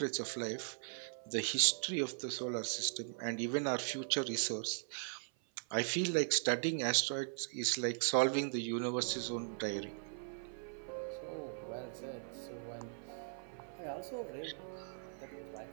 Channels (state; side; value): silent; left; 52 dB below the other